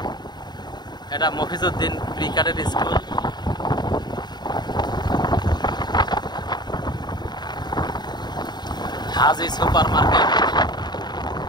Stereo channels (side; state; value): right; late; 0.21 ms